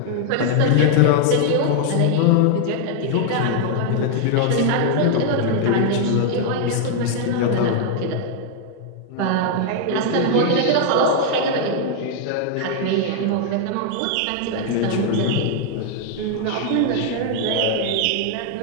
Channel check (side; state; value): both; different; correlation 0.00